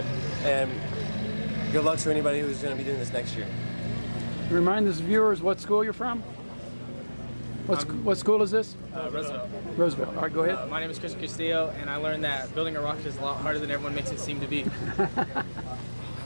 And good luck to anybody who's going to be doing this next year. Remind the viewers what school you're from. What school is this? Roosevelt. Roosevelt. All right, go ahead. My name is Christian Castillo, and I learned that building a rocket is a lot harder than everyone makes it seem to be.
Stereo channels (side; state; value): both; inverted; correlation -1.00